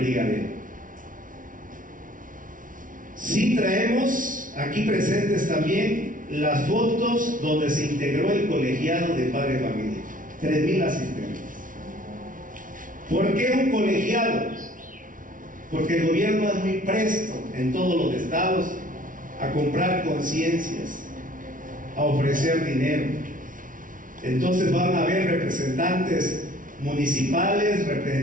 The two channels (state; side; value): late; left; 0.38 ms